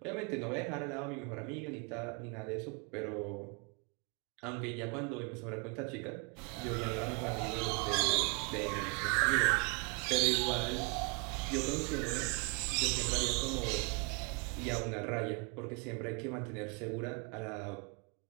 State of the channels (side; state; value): left; quieter; 33.7 dB